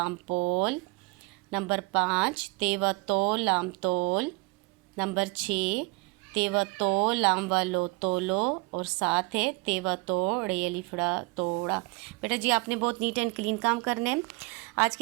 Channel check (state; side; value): quieter; left; 26.6 dB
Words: पोल। नंबर 5 तेवा तोल लाम तोल। नंबर 6 तेवा तो लाम वालो तोलो। और 7 है तेवा तोड़े अलिफड़ा तोड़ा। बेटा जी आपने बहुत नीट एंड क्लीन काम करने हैं। आज